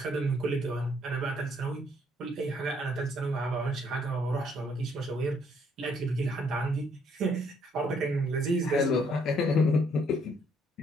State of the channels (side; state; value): both; normal; correlation 0.68